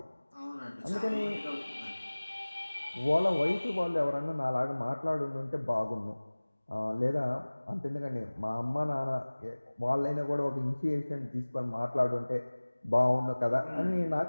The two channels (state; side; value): inverted; both; correlation -1.00